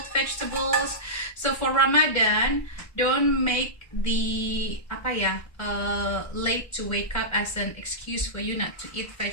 vegetables. So for Ramadan, don't make the late to wake up as an excuse for you not to eat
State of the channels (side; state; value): right; late; 1.4 ms